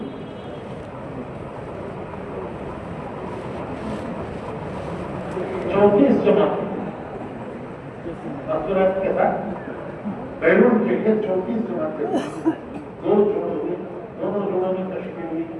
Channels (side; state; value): both; identical; correlation 1.00